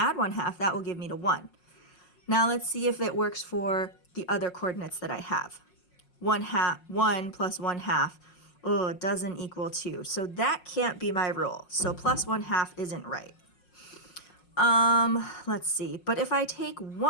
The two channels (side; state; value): right; late; 5.5 ms